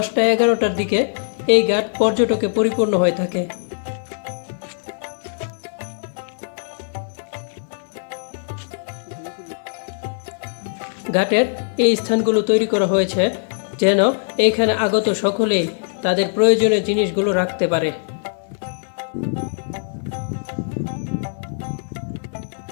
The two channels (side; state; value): right; silent; 58 dB below the other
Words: দিকে এই ঘাট পর্যটকে পরিপূর্ণ হয়ে থাকে। ঘাটের এই স্থানগুলো তৈরি করা হয়েছে যেন এইখানে আগত সকলেই তাদের প্রয়োজনীয় জিনিসগুলো রাখতে পারে।